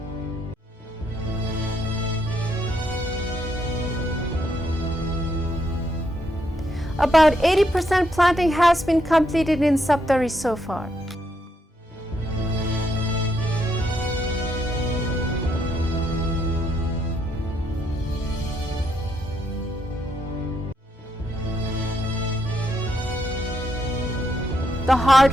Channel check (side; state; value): both; normal; correlation 0.76